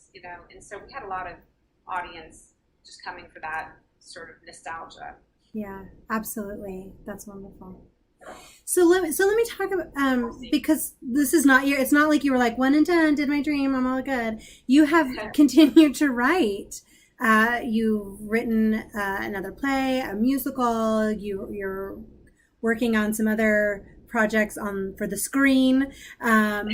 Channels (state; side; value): identical; both; correlation 1.00